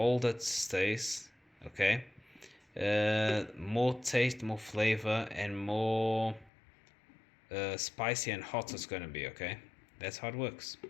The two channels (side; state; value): right; drops out; at 6.5 s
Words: it stays. Okay, more taste, more flavor, and more spicy and hot it's going to be. Okay, that's how it works.